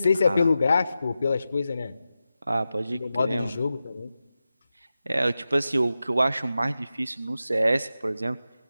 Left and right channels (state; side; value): inverted; both; correlation -0.92